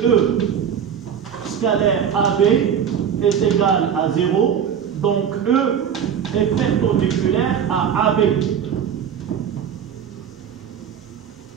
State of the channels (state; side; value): quieter; left; 8.1 dB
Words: scalaire AB est égal à 0, donc E est perpendiculaire à AB.